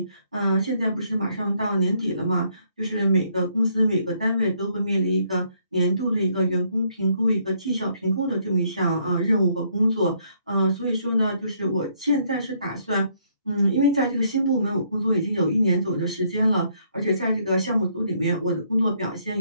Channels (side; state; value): both; inverted; correlation -0.69